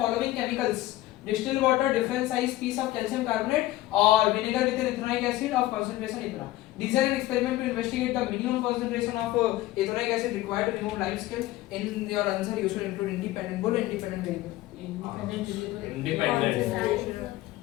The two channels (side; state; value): right; quieter; 16.5 dB